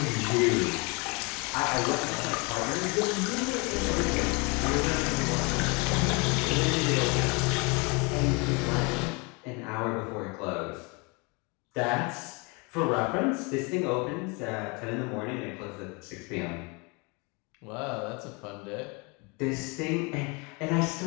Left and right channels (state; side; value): quieter; right; 29.8 dB